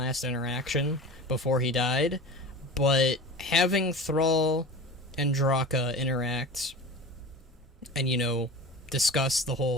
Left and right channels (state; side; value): normal; both; correlation 0.34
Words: interaction before he died, but having Thrall and Draka interact and, you know, discuss the